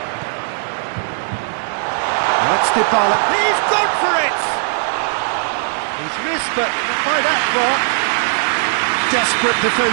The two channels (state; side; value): silent; left; 66 dB below the other